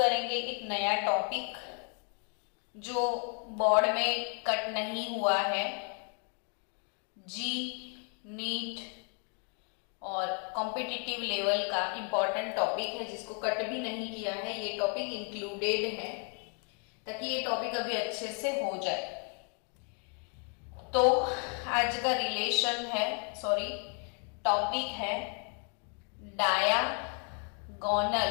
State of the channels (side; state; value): right; quieter; 37.7 dB